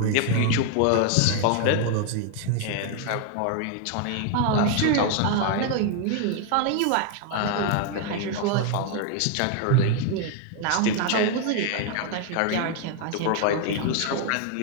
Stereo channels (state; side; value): different; both; correlation 0.00